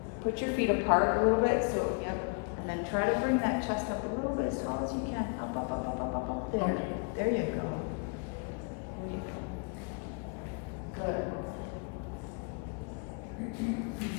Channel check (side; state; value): right; quieter; 34.5 dB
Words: put your feet apart a little bit. So, yep. And then try to bring that chest up a little bit as tall as you can. Up, up, up, up, up, up, up. There. There you go. Good.